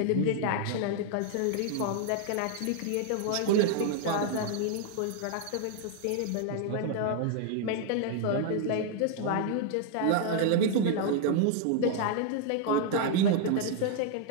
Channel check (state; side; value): different; both; correlation 0.00